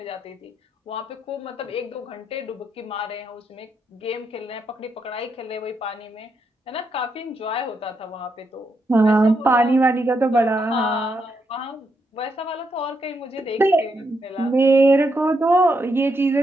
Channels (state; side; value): normal; both; correlation 0.80